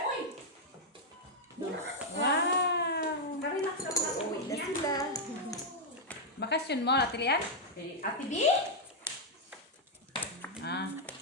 uy! Wow. Karelax ka mga uwi Na niya. sila. Bakasyon mo, Atilian? Ate B? Ah.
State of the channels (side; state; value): both; normal; correlation -0.02